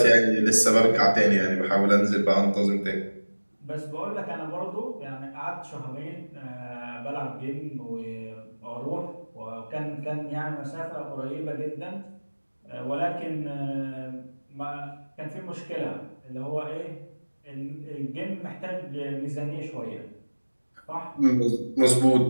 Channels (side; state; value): both; inverted; correlation -1.00